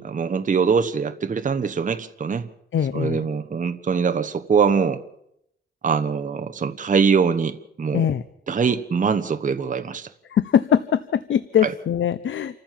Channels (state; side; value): normal; both; correlation 0.41